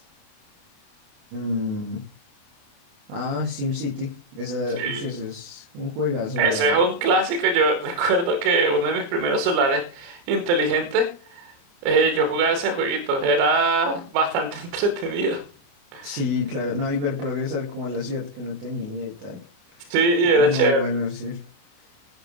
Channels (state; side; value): late; left; 29 ms